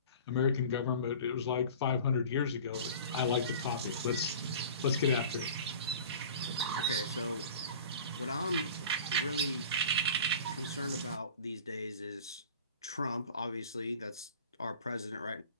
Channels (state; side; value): inverted; both; correlation -0.41